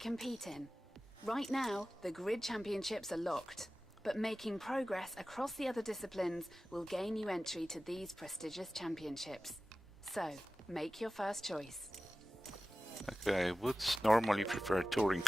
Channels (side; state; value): both; normal; correlation 0.96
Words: in. Right now, the Grid Championships are locked, but making progress across the other disciplines will gain you entry to these prestigious championships. So, make your first choice. Okay, I would normally prefer touring